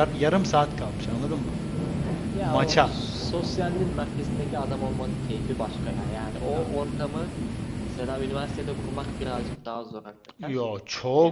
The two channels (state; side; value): identical; both; correlation 1.00